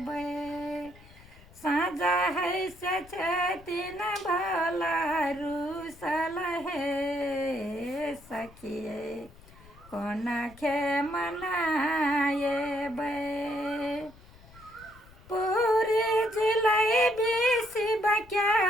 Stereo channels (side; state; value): left; noise; rumble, 23 dB below the sound